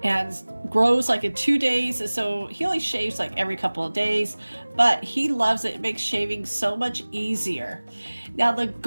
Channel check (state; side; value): inverted; both; correlation -1.00